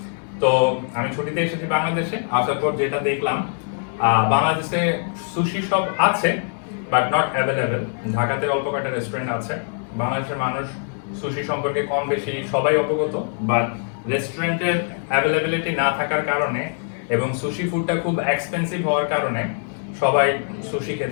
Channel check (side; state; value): right; silent; 59 dB below the other